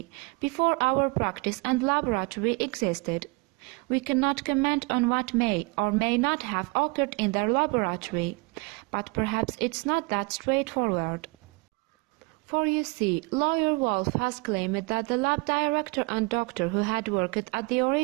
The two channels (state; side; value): quieter; left; 27.8 dB